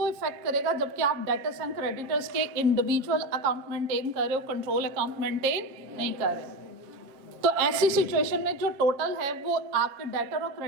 इफेक्ट करेगा, जबकि आप डेटर्स एंड क्रेडिटर्स के इंडिविजुअल अकाउंट मेंटेन कर रहे हो, कंट्रोल अकाउंट मेंटेन नहीं कर रहे। तो ऐसी सिचुएशन में जो टोटल है वो आपके डेटर और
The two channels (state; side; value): late; left; 7.4 ms